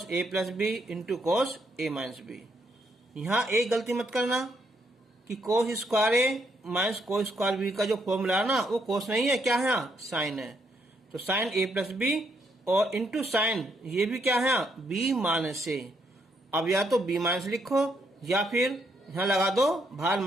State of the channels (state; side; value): normal; both; correlation 0.75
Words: A plus B into cos A minus B. यहाँ एक गलती मत करना कि cos square A minus cos square B का जो फॉर्मूला है ना वो कॉस नहीं है, क्या है, साइन है। तो साइन ए प्लस बी और इंटू साइन ये भी क्या है, बी माइनस ए। अब या तो बी माइनस लिखो या फिर यहाँ लगा दो बाहर